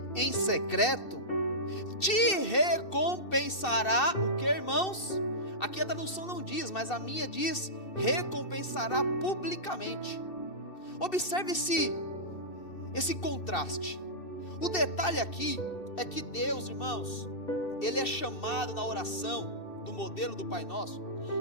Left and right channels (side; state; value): right; late; 2.7 ms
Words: em secreto te recompensará. O que, irmãos? Aqui a tradução não diz, mas a minha diz: recompensará publicamente. Observe esse contraste. O detalhe aqui é que Deus, irmãos, ele é chamado na oração do modelo do Pai Nosso.